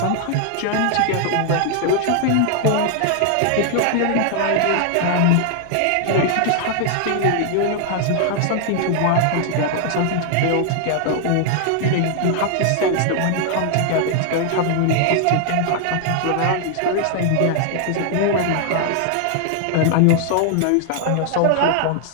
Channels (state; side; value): different; both; correlation 0.00